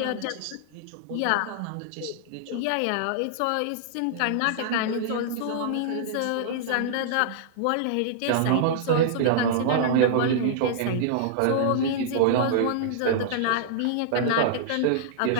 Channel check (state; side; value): different; both; correlation -0.01